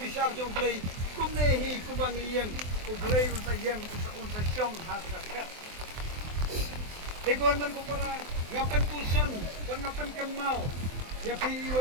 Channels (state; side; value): late; left; 23 ms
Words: jong play kumne hi kubang yang ublay unsa yang unsa syong haga kat Egon man kupara ngapan puson kon ngapan kemau ya